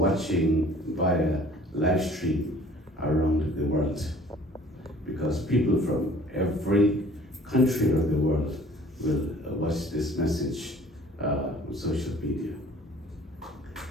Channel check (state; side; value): normal; both; correlation 0.51